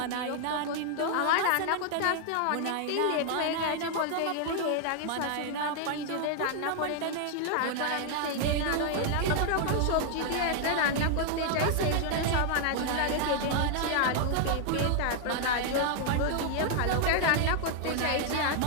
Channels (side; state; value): both; different; correlation 0.00